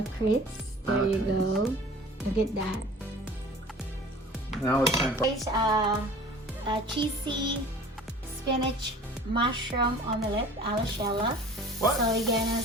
Crits. There you go. Look at that. Now it's time for... Guys, cheesy spinach mushroom omelette a la Sheila. What? So we're gonna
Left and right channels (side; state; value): both; normal; correlation 0.44